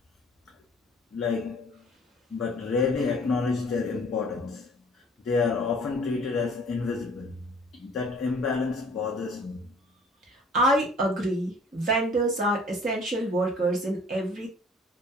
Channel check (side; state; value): both; normal; correlation 0.52